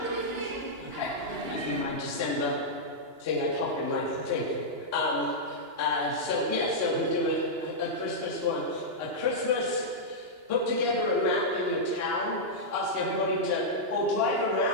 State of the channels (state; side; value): late; left; 2.9 ms